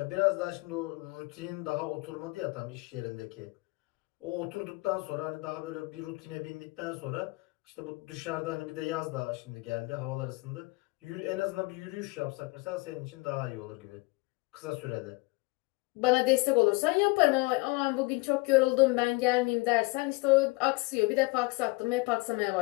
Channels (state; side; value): quieter; right; 25.2 dB